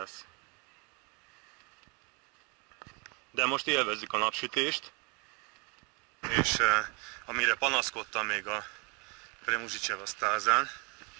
De most élvezzük a napsütést, és amire panaszkodtam még a Premuzsicseva Stázán,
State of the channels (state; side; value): quieter; left; 32.0 dB